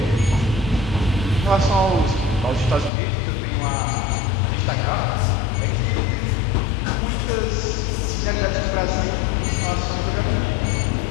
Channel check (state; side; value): drops out; right; at 2.9 s